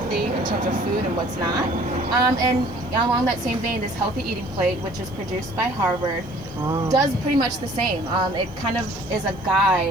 in terms of food and what's not. And along that same vein, this healthy eating plate, which is produced by Harvard, does pretty much the same. It kind of is a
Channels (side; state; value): right; noise; hiss, 30 dB below the sound